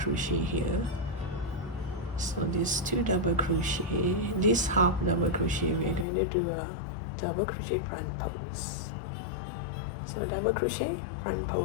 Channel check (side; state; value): right; drops out; at 6.1 s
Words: here. So these 2 double crochet, this half double crochet, we are going to do a double crochet front pose. So double crochet, front